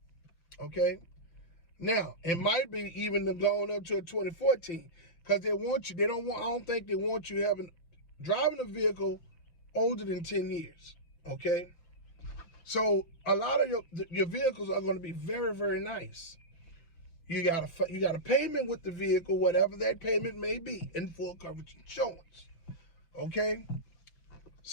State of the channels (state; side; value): late; right; 5.9 ms